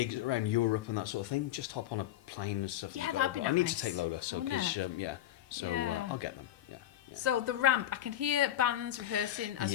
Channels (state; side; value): quieter; right; 12.8 dB